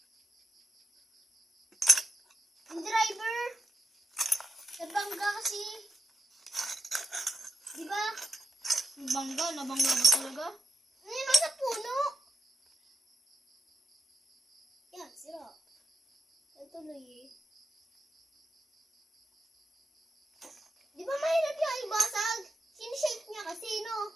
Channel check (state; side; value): normal; both; correlation 0.84